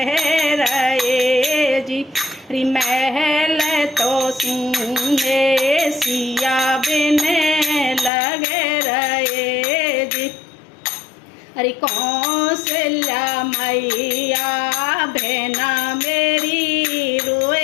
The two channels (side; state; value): right; drops out; at 8.1 s